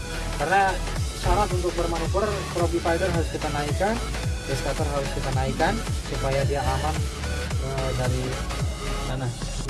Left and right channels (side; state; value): both; identical; correlation 1.00